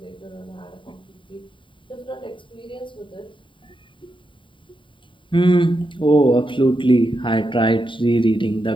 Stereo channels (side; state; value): right; late; 0.24 ms